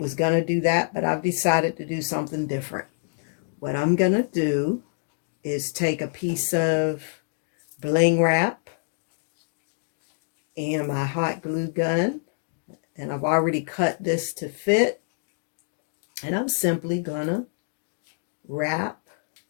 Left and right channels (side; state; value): right; silent; digital silence